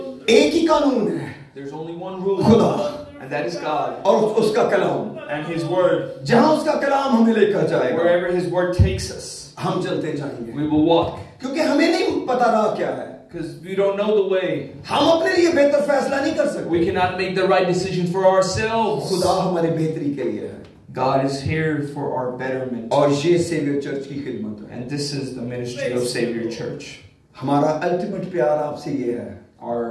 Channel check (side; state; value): both; identical; correlation 1.00